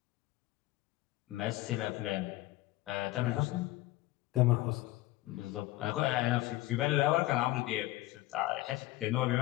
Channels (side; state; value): right; quieter; 17.9 dB